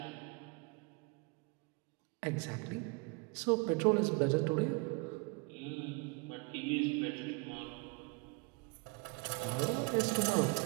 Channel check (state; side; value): quieter; left; 29.4 dB